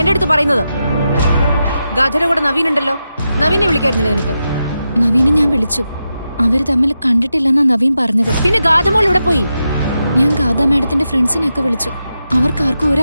എന്റെ അടുത്ത് പറയുന്നത്? ഗാഥയുടെ കൂടെ നവീൻ ഉണ്ടല്ലോ, നവീനെ വിളിക്കായിരുന്നില്ല നിനക്ക്? നവീനെ ഞാൻ വിളിച്ചു. അവര് തമ്മിൽ കണ്ടിട്ടില്ലെന്നാ നവീൻ പറഞ്ഞത്. പിന്നെ ഗാഥമോൾ ഇവിടെ പോയി? ഞാൻ ഗാഥ മാഡത്തിന്റെ ഫ്രണ്ട്സിനെയൊക്കെ വിളിച്ചു. അവർക്കാർക്കും ഒരു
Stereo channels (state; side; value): inverted; both; correlation -0.88